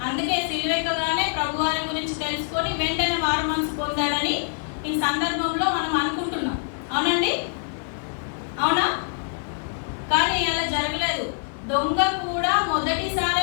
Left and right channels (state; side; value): silent; right; 62 dB below the other